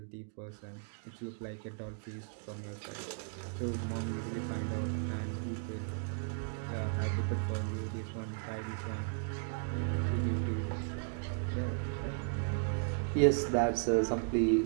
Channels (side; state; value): left; silent; 54 dB below the other